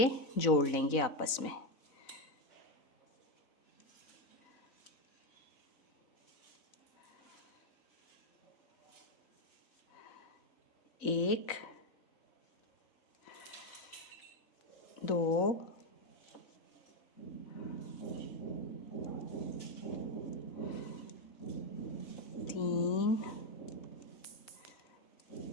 जोड़ लेंगे आपस में। एक, 2, 3,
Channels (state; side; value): late; right; 4.0 ms